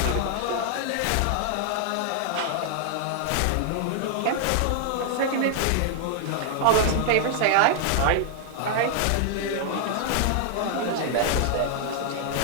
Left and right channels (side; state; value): both; different; correlation -0.01